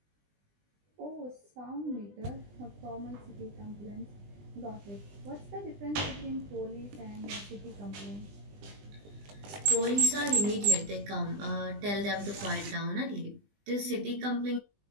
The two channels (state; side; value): late; left; 20 ms